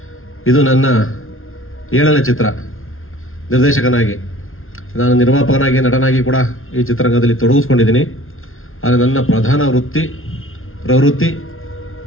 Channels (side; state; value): right; late; 0.61 ms